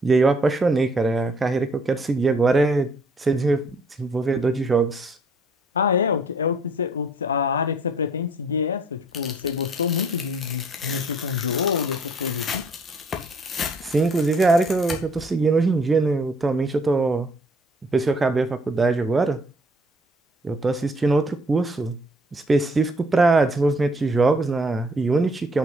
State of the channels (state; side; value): normal; both; correlation 0.62